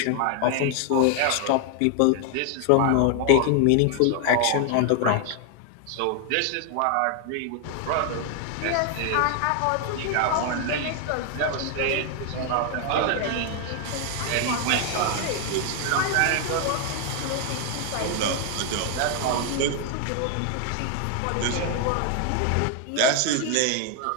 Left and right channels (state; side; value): different; both; correlation 0.00